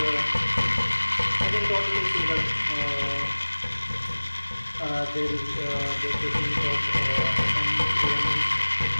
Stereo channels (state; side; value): inverted; both; correlation -1.00